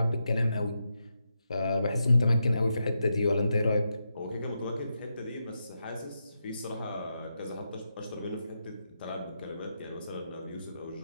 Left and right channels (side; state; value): both; inverted; correlation -0.85